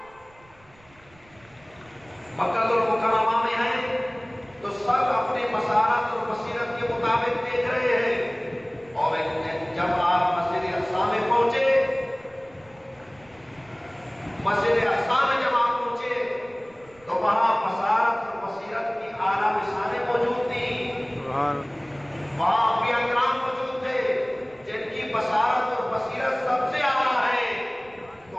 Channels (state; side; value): noise; right; rumble, 28 dB below the sound